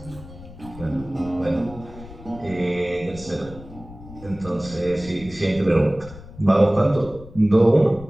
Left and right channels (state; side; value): noise; left; rumble, 17 dB below the sound